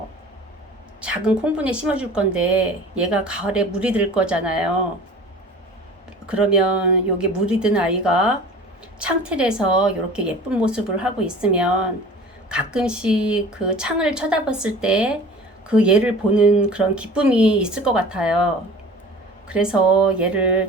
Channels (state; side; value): normal; both; correlation 0.42